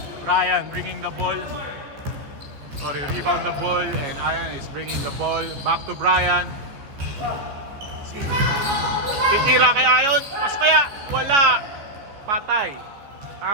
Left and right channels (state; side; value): late; left; 15 ms